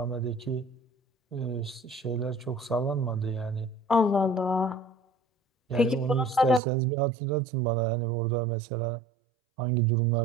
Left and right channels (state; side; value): drops out; left; at 6.6 s